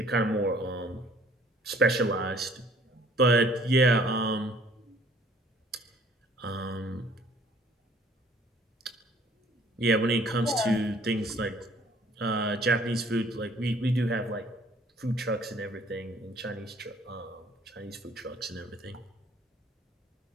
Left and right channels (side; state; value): both; normal; correlation 0.57